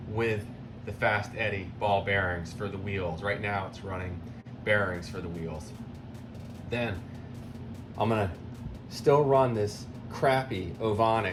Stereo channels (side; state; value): both; identical; correlation 1.00